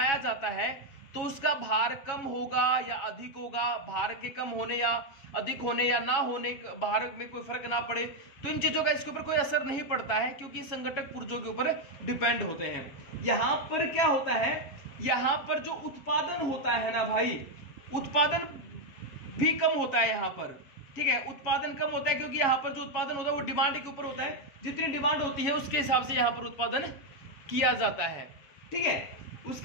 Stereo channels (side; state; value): right; late; 7.2 ms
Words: जाता है तो उसका भार कम होगा या अधिक होगा, भार के कम होने या अधिक होने या ना होने, भार में कोई फर्क ना पड़े, तो इन चीजों का इसके ऊपर कोई असर नहीं पड़ता है, क्योंकि संगठक पुर्जों के ऊपर डिपेंड होते हैं। यहां पर क्या होता है, यहां पर जो उत्पादन होता है ना भाई, उत्पादन भी कम होता है यहाँ पर, ठीक है। उत्पादन कम होता है क्योंकि यहाँ पर जो उत्पादन होता है वो डिमांड के ऊपर होता है। जितनी डिमांड होती है उसके हिसाब से यहाँ पर उत्पादन किया जाता है, ठीक है।